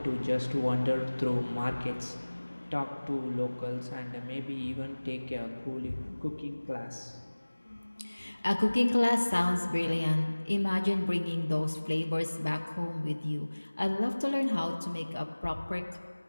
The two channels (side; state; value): both; inverted; correlation -1.00